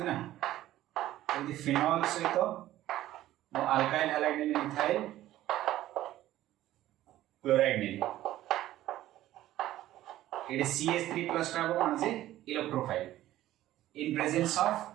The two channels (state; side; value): quieter; left; 14.2 dB